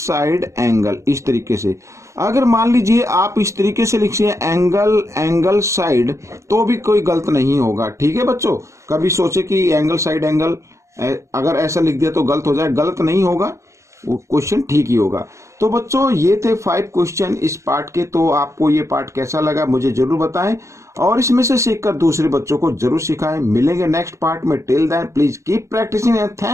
एंगल इस तरीके से। अगर मान लीजिए आप इस तरीके से लिखिए एंगल एंगल साइड, तो भी कोई गलत नहीं होगा। ठीक है बच्चों, कभी सोचे कि एंगल साइड एंगल अगर ऐसा लिख दिया तो गलत हो जाए, गलत नहीं होगा, वो क्वेश्चन ठीक ही होगा। तो बच्चों ये थे 5 क्वेश्चन इस पार्ट के। तो आपको ये पार्ट कैसा लगा मुझे जरूर बताएं और इसमें से सीखकर दूसरे बच्चों को जरूर सिखाएं। मिलेंगे नेक्स्ट पार्ट में। Till then please keep practising and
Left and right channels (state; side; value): late; left; 0.14 ms